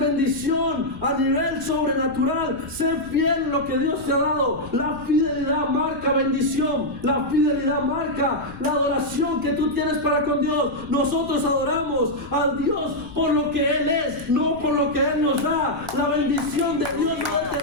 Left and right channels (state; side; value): noise; left; rumble, 17 dB below the sound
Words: a nivel sobrenatural? Sé fiel en lo que Dios te ha dado. La fidelidad marca bendición. La fidelidad marca la adoración que tú tienes para con Dios. Nosotros adoramos a Dios por lo que Él es, no por lo que Él nos da. La bendición de Dios no